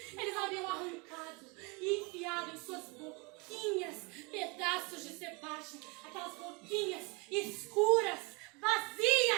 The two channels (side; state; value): left; quieter; 29.5 dB